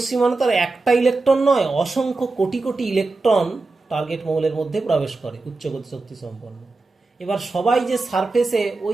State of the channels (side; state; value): left; quieter; 3.5 dB